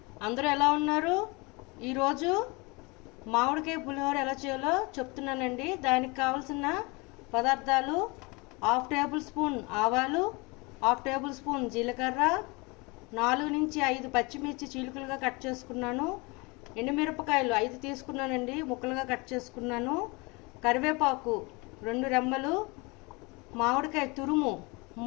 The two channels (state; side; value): quieter; right; 27.0 dB